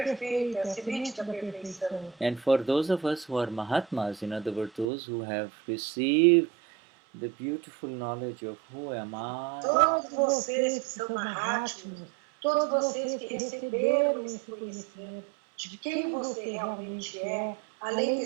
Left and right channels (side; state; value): left; drops out; at 4.9 s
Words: a semente da perfeição. And for those of us who are Mahatmas, in other words, those who have received the beautiful knowledge of who am I, todos vocês que são Mahatmas, todos vocês que receberam esse conhecimento de quem você realmente é, além